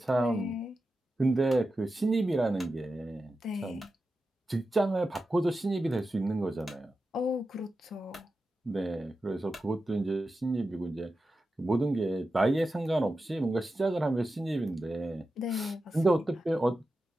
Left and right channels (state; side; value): normal; both; correlation 0.91